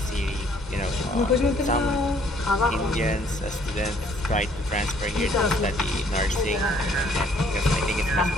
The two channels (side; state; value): both; normal; correlation 0.62